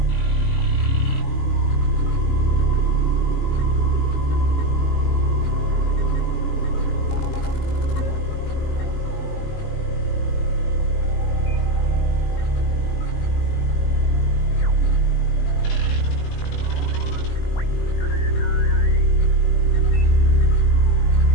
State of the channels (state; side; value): late; right; 20 ms